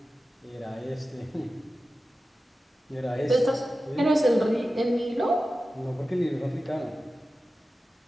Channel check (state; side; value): normal; both; correlation 0.94